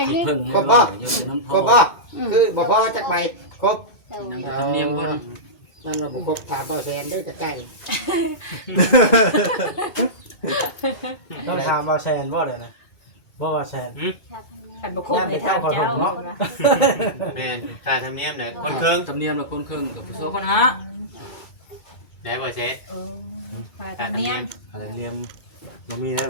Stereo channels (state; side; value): late; right; 2.2 ms